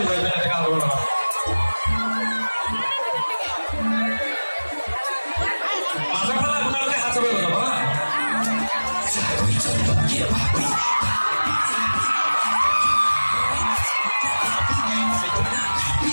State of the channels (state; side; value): inverted; both; correlation -1.00